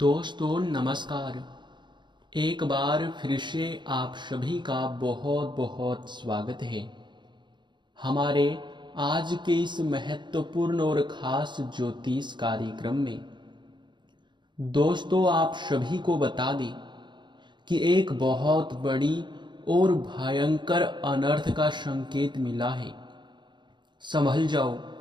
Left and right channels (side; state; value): left; late; 0.22 ms